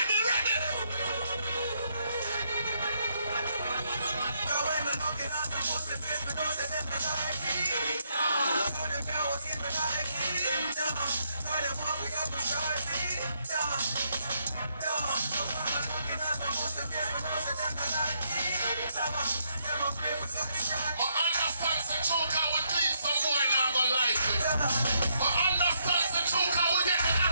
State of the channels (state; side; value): inverted; both; correlation -0.75